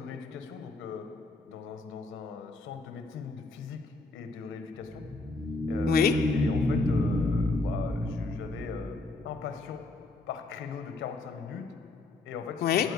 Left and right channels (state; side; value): quieter; right; 3.4 dB